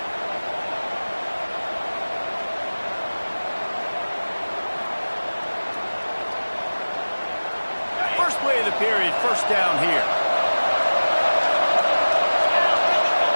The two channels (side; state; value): both; inverted; correlation -1.00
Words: First play of the period, first down here.